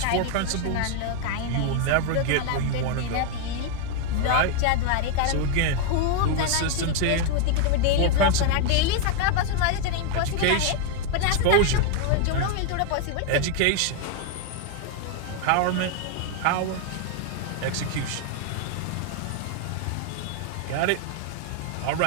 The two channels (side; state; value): both; different; correlation 0.01